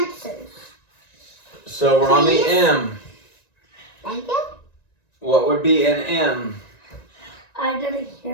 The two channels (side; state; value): right; late; 1.9 ms